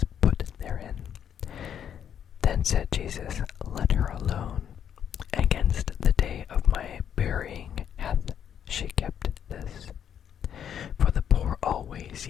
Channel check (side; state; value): right; quieter; 8.9 dB